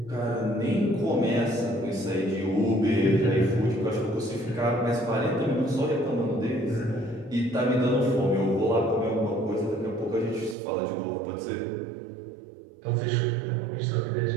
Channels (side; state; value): left; drops out; at 10.6 s